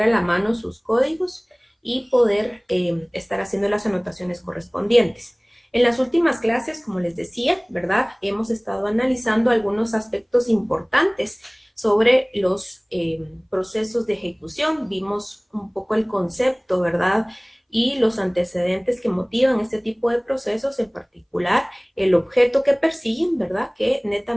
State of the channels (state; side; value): identical; both; correlation 1.00